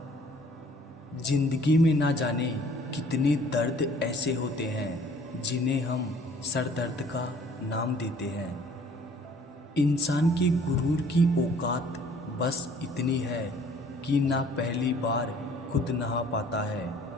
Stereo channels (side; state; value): both; normal; correlation 0.55